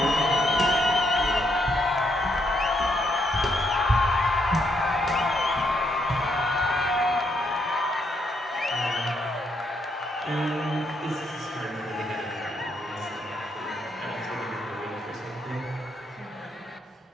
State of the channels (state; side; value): normal; both; correlation 0.75